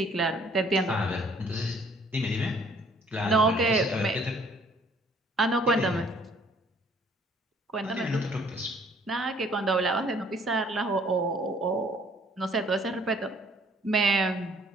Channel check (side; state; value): both; normal; correlation 0.60